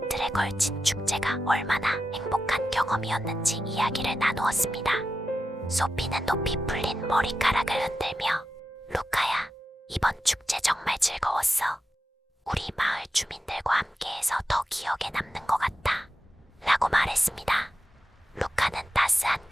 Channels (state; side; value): normal; both; correlation 0.90